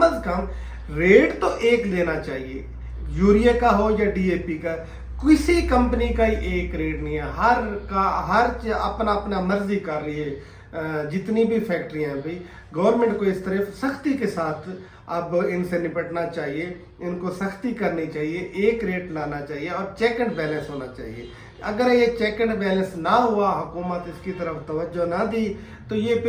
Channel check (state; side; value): identical; both; correlation 1.00